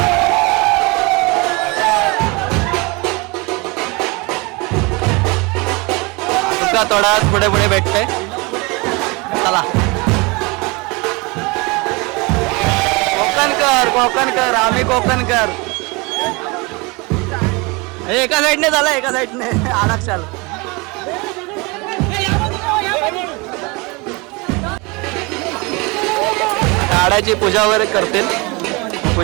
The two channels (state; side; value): quieter; left; 27.1 dB